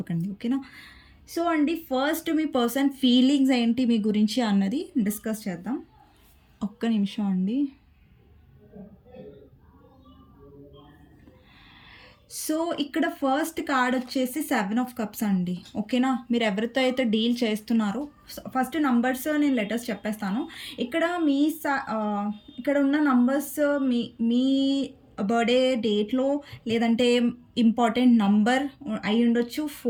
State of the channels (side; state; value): both; identical; correlation 1.00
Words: ఓకేనా. సో అండి, ఫస్ట్ మీ పర్సన్ ఫీలింగ్స్ ఏంటి మీ గురించి అన్నది డిస్కస్ చేద్దాం. ఒక్క నిమిషం అండి. సో ఇక్కడ ఫస్ట్ కార్డ్ వచ్చేసి 7 ఆఫ్ కప్స్ అండి. ఓకేనా. మీరు ఎవరితో అయితే డీల్ చేస్తున్నారో, ఫస్ట్ నంబర్స్ నేను లెటర్స్ చెప్పేస్తాను. ఇక్కడ ఇక్కడ ఉన్న నంబర్స్ మీ బర్త్డే డేట్లో, లేదంటే ఇంపార్టెంట్ నంబర్ అయి ఉండొచ్చు.